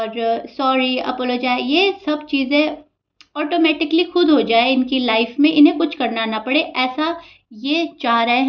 सॉरी, अपोलोजाइज, ये सब चीज़ें ऑटोमेटिकली खुद हो जाए इनकी लाइफ में, इन्हें कुछ करना ना पड़े। ऐसा ये चाह रहे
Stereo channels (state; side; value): identical; both; correlation 1.00